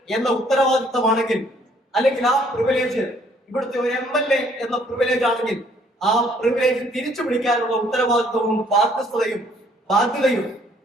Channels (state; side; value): normal; both; correlation 0.62